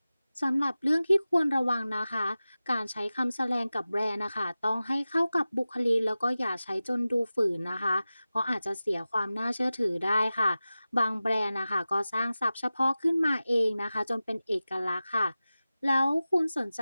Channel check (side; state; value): both; inverted; correlation -0.96